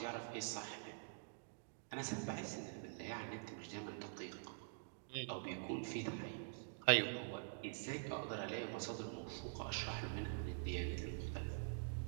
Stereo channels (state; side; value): silent; left; digital silence